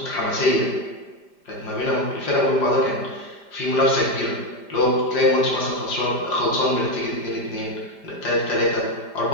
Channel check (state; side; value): late; right; 5.0 ms